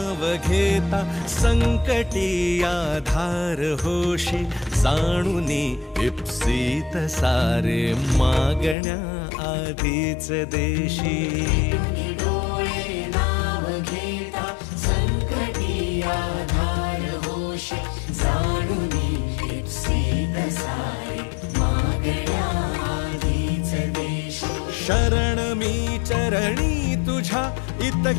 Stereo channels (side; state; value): right; drops out; at 8.8 s